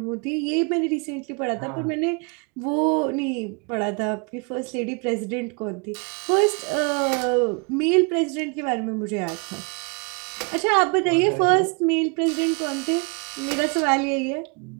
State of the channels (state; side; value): quieter; left; 33.8 dB